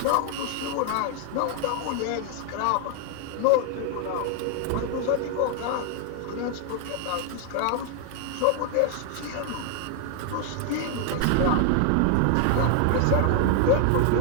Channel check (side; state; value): both; different; correlation 0.00